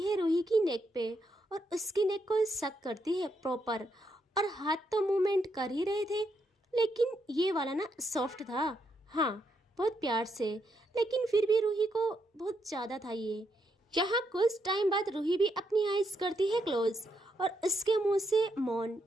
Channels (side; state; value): both; normal; correlation 0.79